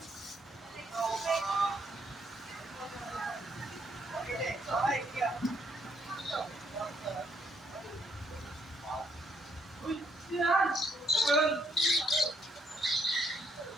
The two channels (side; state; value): both; normal; correlation 0.70